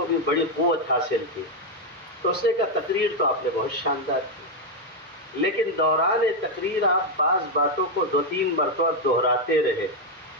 بھی بڑی قوت حاصل تھی. تو اس نے کہا تقریر تو آپ نے بہت شاندار کی، لیکن دوران تقریر آپ بعض باتوں کو 2-3 مرتبہ دہراتے رہے،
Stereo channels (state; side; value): normal; both; correlation 0.03